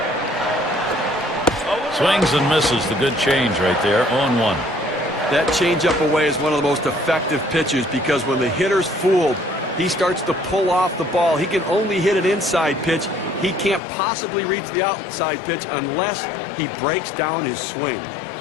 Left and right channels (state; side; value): drops out; right; at 13.8 s